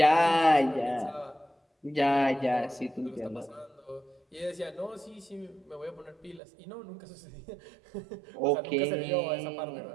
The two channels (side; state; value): left; drops out; at 6.4 s